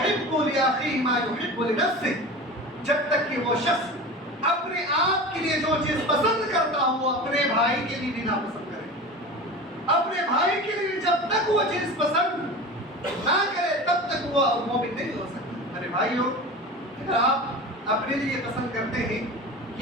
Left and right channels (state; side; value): normal; both; correlation 0.32